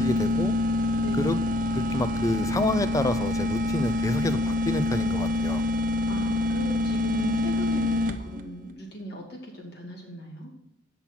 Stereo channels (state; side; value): normal; both; correlation 0.63